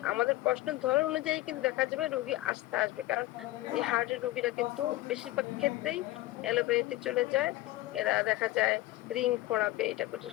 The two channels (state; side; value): quieter; right; 17.7 dB